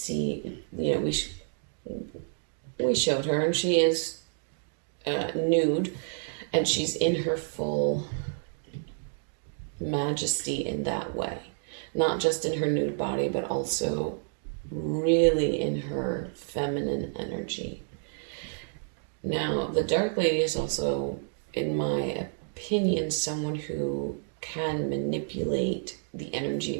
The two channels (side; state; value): left; silent; digital silence